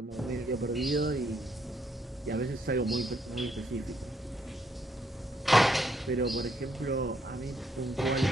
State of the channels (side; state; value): both; normal; correlation 0.73